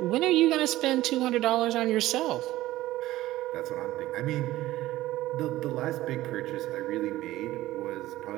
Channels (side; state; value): left; quieter; 16.1 dB